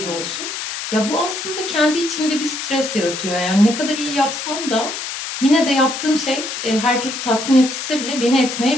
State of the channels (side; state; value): left; noise; hiss, 6 dB below the sound